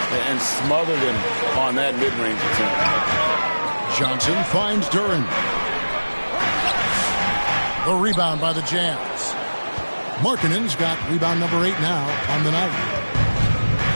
And smothered him on that mid-range attempt. Johnson finds Duren. The rebound by the Jazz. Markkanen's got rebound number 8 now on the night.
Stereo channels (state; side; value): inverted; both; correlation -1.00